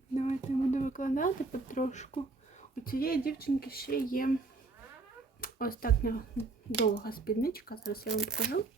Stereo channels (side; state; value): left; quieter; 3.7 dB